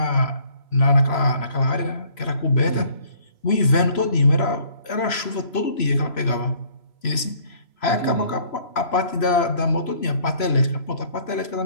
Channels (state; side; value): late; right; 3.0 ms